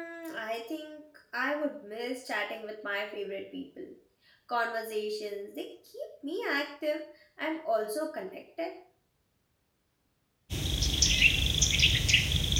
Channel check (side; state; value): both; identical; correlation 1.00